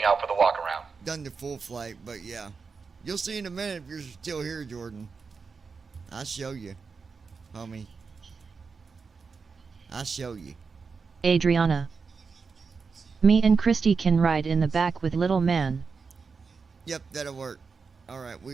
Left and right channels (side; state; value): left; quieter; 5.0 dB